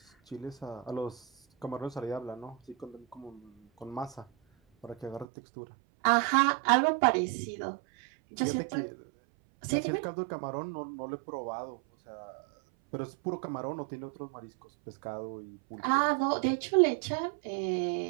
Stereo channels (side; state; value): left; drops out; at 5.2 s